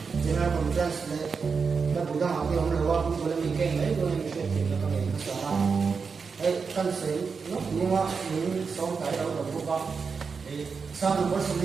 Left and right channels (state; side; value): quieter; left; 5.3 dB